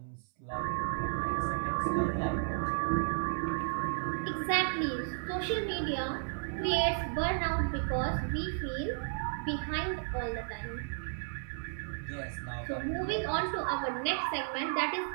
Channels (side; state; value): left; silent; 55 dB below the other